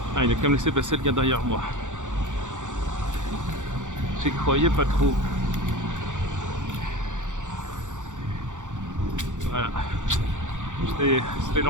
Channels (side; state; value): left; late; 0.86 ms